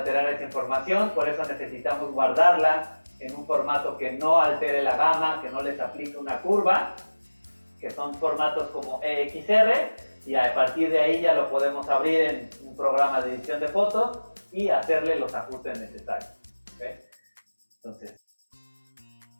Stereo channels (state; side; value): inverted; both; correlation -1.00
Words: esa información, por eso necesitamos guardarla en un formato que no altere la gama, que no les aplique una curva, que son formatos como EXR, y a partir de ahí ya lo podemos abrir en un programa de edición de fotos y hacerle los ajustes necesarios. ¿Okay? Entonces,